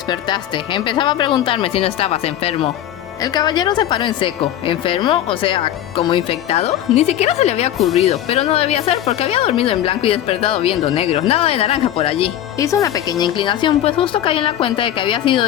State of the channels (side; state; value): right; quieter; 11.8 dB